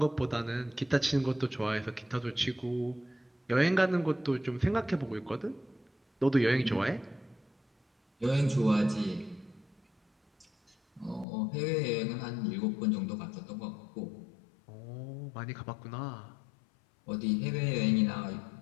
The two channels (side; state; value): right; drops out; at 11.2 s